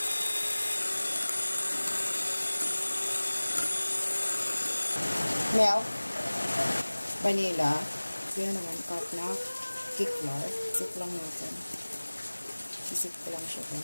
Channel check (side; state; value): both; inverted; correlation -1.00